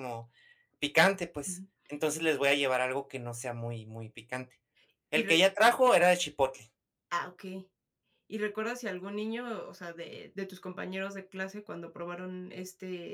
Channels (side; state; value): both; identical; correlation 1.00